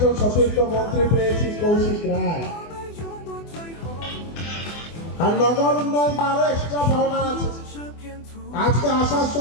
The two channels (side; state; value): right; late; 24 ms